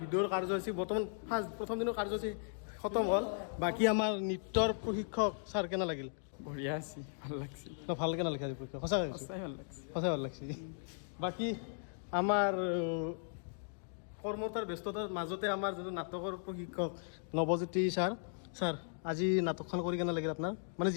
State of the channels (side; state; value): right; silent; digital silence